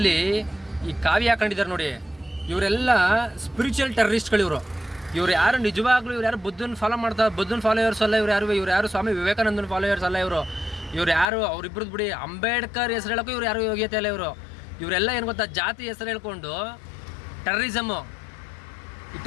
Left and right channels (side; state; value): right; drops out; at 11.2 s